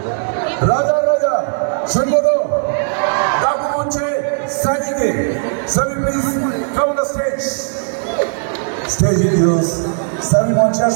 রাজা রাজা শুনবো তো? ডাকু মঞ্চে সাজিদে, সবই please come the stage. Stage use সবই মঞ্চে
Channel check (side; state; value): left; silent; digital silence